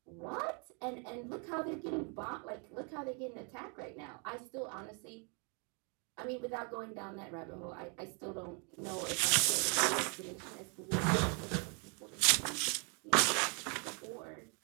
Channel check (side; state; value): left; quieter; 36.5 dB